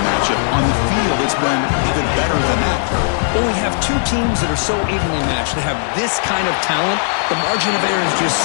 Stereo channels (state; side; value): silent; right; digital silence